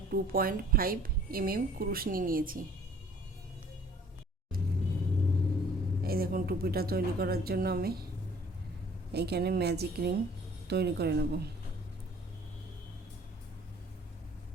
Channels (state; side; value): normal; both; correlation 0.55